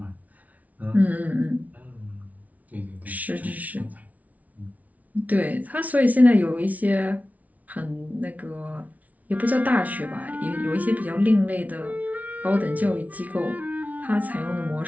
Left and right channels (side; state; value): left; late; 0.072 ms